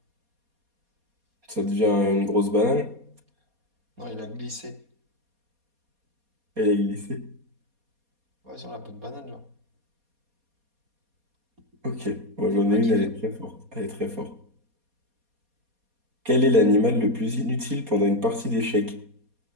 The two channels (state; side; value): late; left; 4.2 ms